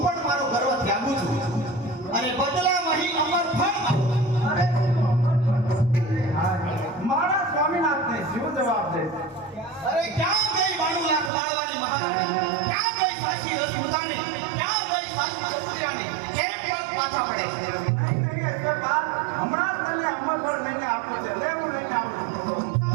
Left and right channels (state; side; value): drops out; left; at 11.3 s